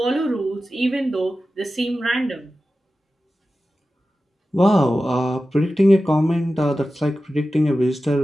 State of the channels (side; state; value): both; normal; correlation 0.94